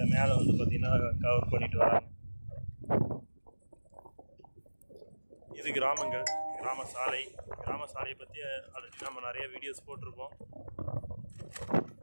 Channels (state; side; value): inverted; both; correlation -1.00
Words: மேலே வந்து பார்த்திங்கன்னா கவர் பண்ணிட்டு வராங்க. இது கிராமங்கள், கிராம சாலையை பற்றி ஆல்ரெடி நம்ம நிறைய வீடியோஸ் போட்டிருப்போம்.